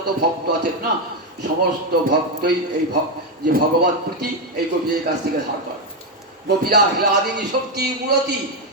ভক্ত আছেন না, সমস্ত ভক্তই এই যে ভগবত প্রীতি এই গোপীদের কাছ থেকে ধার করে। গোপীরা হ্লাদিনী শক্তি মূরতি,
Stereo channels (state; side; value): normal; both; correlation 0.06